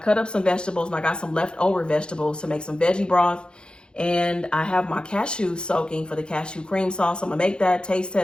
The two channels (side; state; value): right; late; 0.050 ms